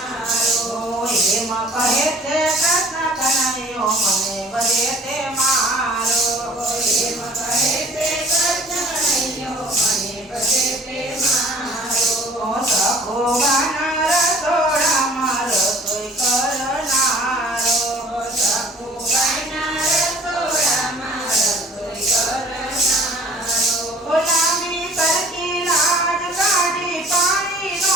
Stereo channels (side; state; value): both; normal; correlation 0.50